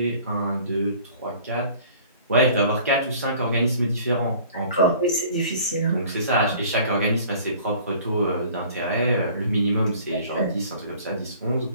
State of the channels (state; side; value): inverted; both; correlation -0.50